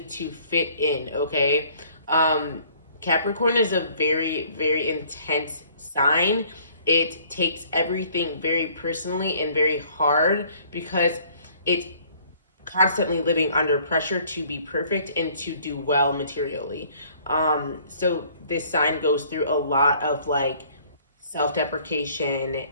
to fit in, okay? Um, Capricorn is a very, very intense sign. It takes everything very personally and very hard because it's constantly living under pressure to be perfect and to do well materially. So this sign goes through a lot of like self deprecation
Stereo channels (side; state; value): both; inverted; correlation -0.58